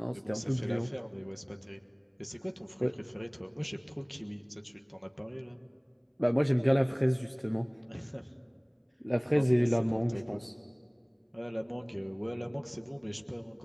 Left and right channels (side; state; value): both; identical; correlation 1.00